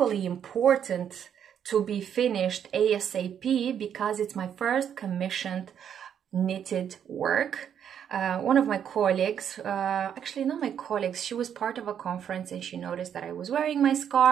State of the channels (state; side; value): quieter; left; 8.8 dB